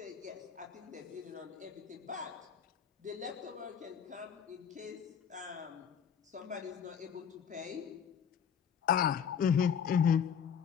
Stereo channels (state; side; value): quieter; right; 7.6 dB